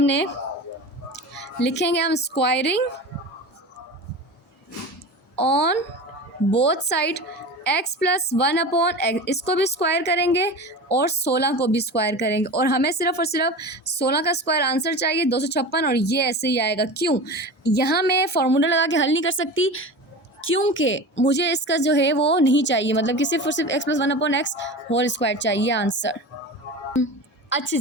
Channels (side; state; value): both; normal; correlation 0.31